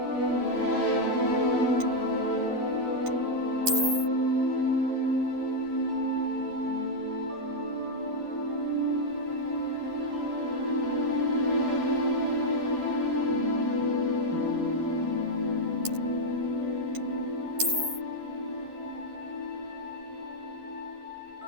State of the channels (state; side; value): late; left; 11 ms